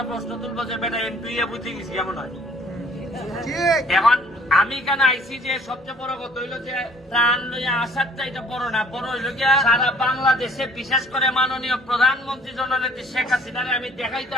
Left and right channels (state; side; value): normal; both; correlation 0.55